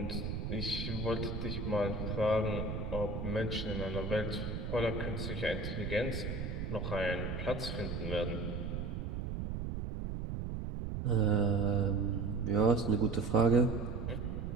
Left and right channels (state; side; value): noise; right; rumble, 4 dB below the sound